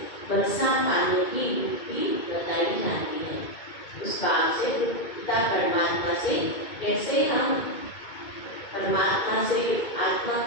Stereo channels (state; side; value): late; right; 2.2 ms